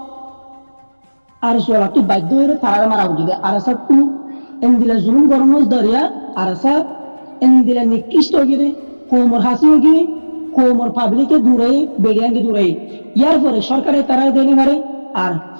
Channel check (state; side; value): inverted; both; correlation -1.00